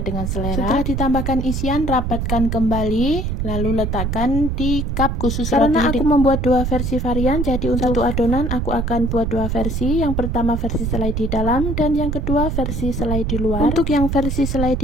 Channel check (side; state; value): right; noise; rumble, 1 dB below the sound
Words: dengan selera. Setelah ditambahkan isian, rapatkan kembali, lalu letakkan di cup khusus roti. Karena aku membuat 2 versi varian, jadi untuk satu adonan aku akan buat 2 versi. Yang pertama versi selai di dalam dan yang kedua versi selai di luar. Untuk yang versi selai